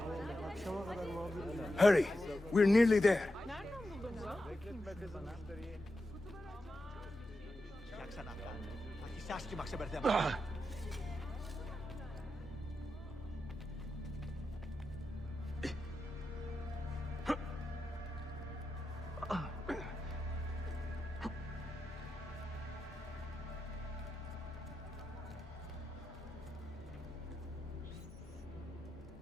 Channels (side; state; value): both; normal; correlation 0.89